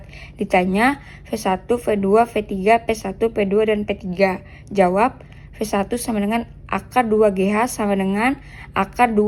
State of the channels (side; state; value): both; identical; correlation 1.00